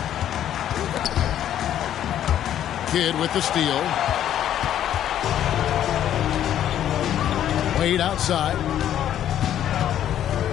Kidd with the steal. Wade outside.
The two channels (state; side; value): quieter; right; 10.9 dB